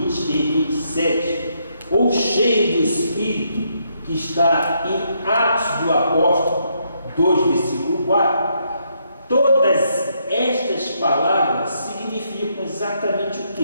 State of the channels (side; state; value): both; inverted; correlation -0.75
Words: e 27, ou cheio do Espírito, que está em Atos do Apóstolo 2, versículo 4, todas estas palavras significam exatamente o